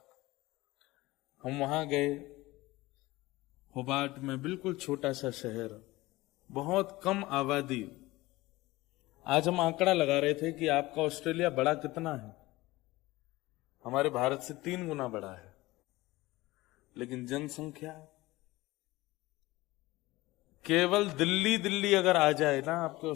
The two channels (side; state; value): right; quieter; 19.5 dB